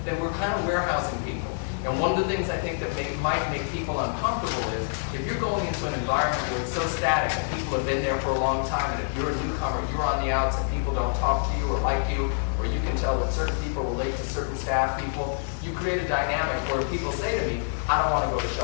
then we're kind of warehousing people. And one of the things I think that might make people uncomfortable is if you're going into an environment where it's so static and people have been there for a long time, and if you're a newcomer, you're on the outs and people don't talk to you or like you, or you can tell that certain people relate to certain staff people. You create a dynamic where people say to me, I don't want to go to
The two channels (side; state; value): right; silent; digital silence